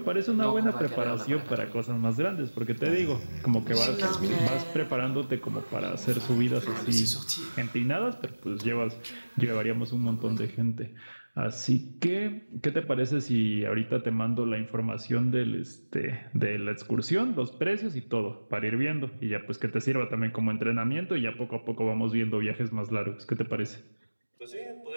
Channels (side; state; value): both; inverted; correlation -1.00